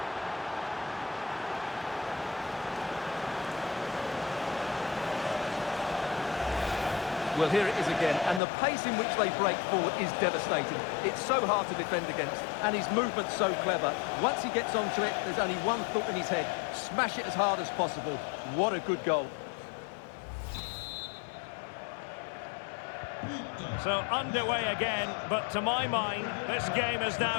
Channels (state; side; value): drops out; right; at 8.4 s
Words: Well, here it is again, and the pace in which they break forward is devastating. It's so hard to defend against, and his movement's so clever. Once he gets onto it, there's only one thought in his head: smash it as hard as possible. What a good goal. So underway again, but to my mind, this game is